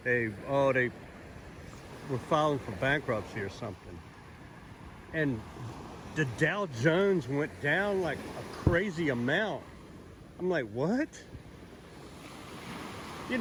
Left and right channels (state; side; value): identical; both; correlation 1.00